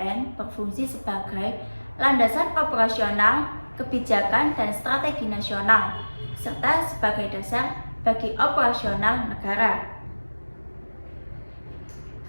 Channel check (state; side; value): inverted; both; correlation -1.00